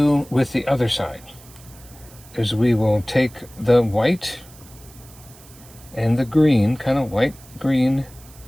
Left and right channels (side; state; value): right; noise; hiss, 23 dB below the sound